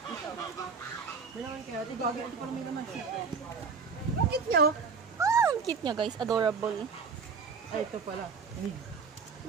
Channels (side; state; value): left; quieter; 5.3 dB